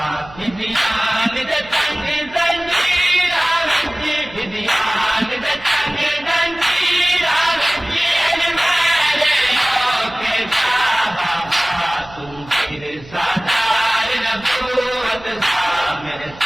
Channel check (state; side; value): noise; right; hum, 20 dB below the sound